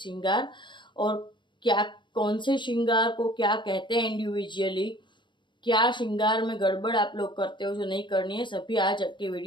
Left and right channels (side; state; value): right; late; 0.23 ms